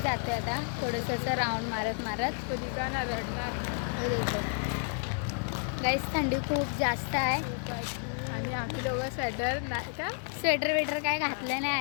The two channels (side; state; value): right; silent; 57 dB below the other